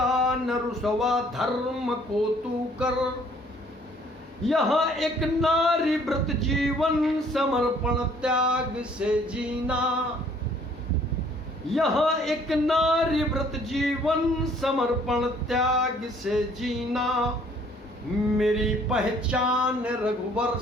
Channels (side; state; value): both; normal; correlation 0.59